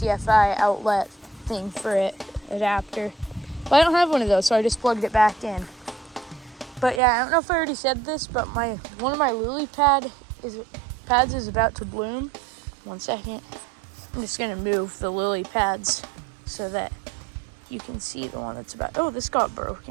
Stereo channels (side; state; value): left; drops out; at 7.0 s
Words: outlet thing for it, adapter. But I don't have one of those, so I just plugged it back in. But yeah, I don't know if I already said this, but one of my lily pads is about to bloom. 1 second. I'm just gonna move the lily pads so that you can see the one that's about. Oh, this got